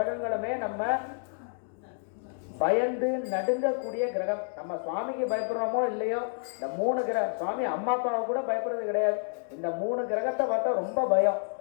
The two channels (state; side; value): silent; right; digital silence